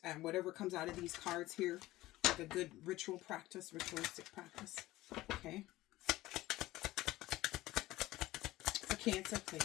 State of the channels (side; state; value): right; quieter; 17.3 dB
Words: and whatever comes out of these cards here. Like a good ritual practice, ritualistic practice. Okay. For Cancer,